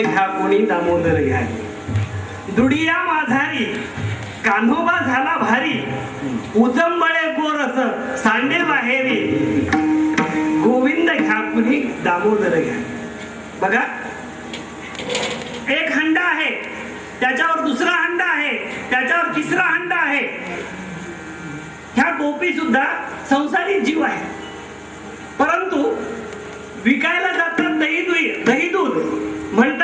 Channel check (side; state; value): both; identical; correlation 1.00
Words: कोणी दामोदर घ्या गे. दुडिया माझारी कान्होबा झाला भारी. उजंबळे गोरस सांडे बाहेरी. गोविंद घ्या कोणी दामोदर घ्या. बघा एक हंडा आहे त्याच्यावर दुसरा हंडा आहे त्याच्यावर तिसरा हंडा आहे. ह्या गोपी सुद्धा संसारी जीव आहे. परंतु विकायला जातात दही दूध